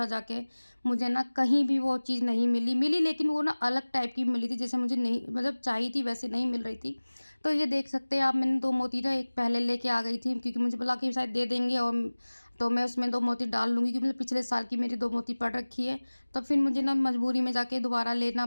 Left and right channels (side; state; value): both; inverted; correlation -1.00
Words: जाके, मुझे ना कहीं भी वो चीज़ नहीं मिली, लेकिन वो ना अलग टाइप की मिली थी, जैसे मुझे नहीं मतलब चाहिए थी वैसे नहीं मिल रही थी। तो ये देख सकते हैं आप, मैंने 2 मोती ना एक पहले लेके आ गई थी, क्योंकि मुझे बोला कि शायद दे देंगे, और तो मैं उसमें 2 मोती डाल लूँगी, क्योंकि मतलब पिछले साल की मेरी 2 मोती पड़ रखी है। तो फिर मुझे ना मजबूरी में जाके दोबारा लेना